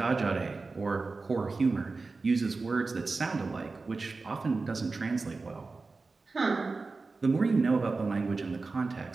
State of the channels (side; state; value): left; quieter; 3.9 dB